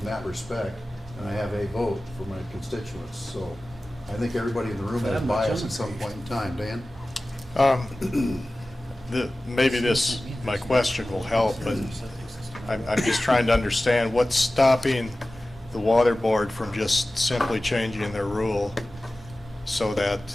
that respect, and I have a vote for my constituents, so I think everybody in the room has bias at some point in time. Dan? Maybe my question will help, but I'm just trying to understand what's stopping the water board from just simply changing their rule so that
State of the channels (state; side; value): normal; both; correlation 0.96